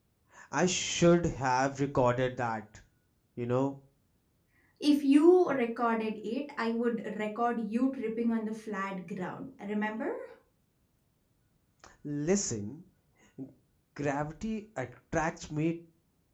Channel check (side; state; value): both; identical; correlation 1.00